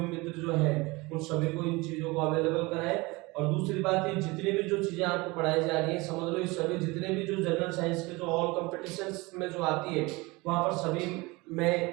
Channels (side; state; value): left; quieter; 23.8 dB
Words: मित्र जो हैं उन सभी को इन चीजों को अवेलेबल कराएं। और दूसरी बात ये जितनी भी जो चीजें आपको पढ़ाई जा रही है, समझ लो ये सभी जितने भी जो जनरल साइंस के जो ऑल कॉम्पिटिशन्स में जो आती है वहां पर सभी